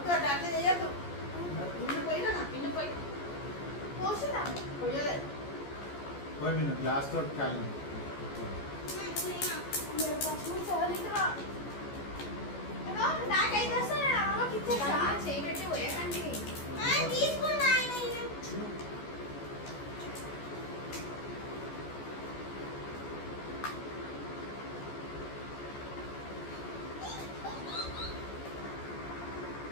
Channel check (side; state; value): right; late; 14 ms